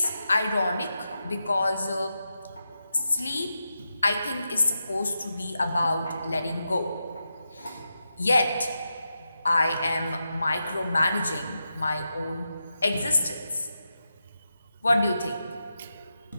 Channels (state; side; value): inverted; both; correlation -0.88